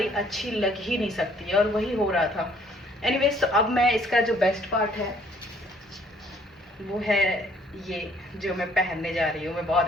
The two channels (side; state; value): both; normal; correlation 0.61